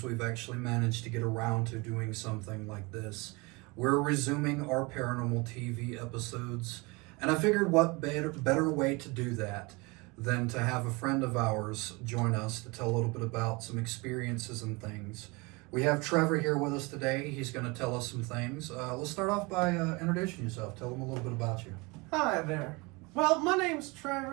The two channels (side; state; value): left; quieter; 26.4 dB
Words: we've actually managed to get around to doing something like this. We're resuming our Paranormal TV episodes, and I figured what better way to do that than to have a friend of ours join us to tell a little bit about some experiences and things. We have Trevor here with us today. He's going to tell us some things. Let's start off by introducing yourself. Tell them a little bit about you. Hi there. Well, my name's